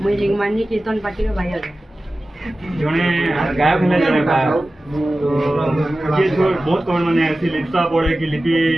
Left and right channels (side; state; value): both; normal; correlation 0.95